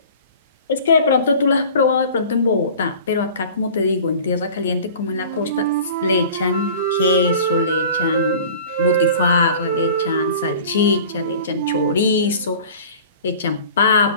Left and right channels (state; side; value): inverted; both; correlation -0.43